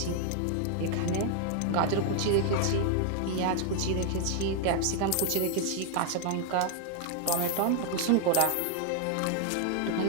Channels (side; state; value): both; different; correlation 0.00